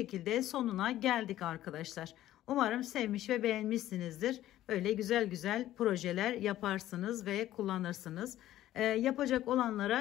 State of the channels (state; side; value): quieter; right; 13.7 dB